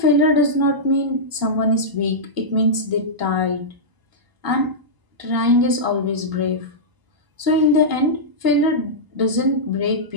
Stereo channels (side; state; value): left; late; 1.0 ms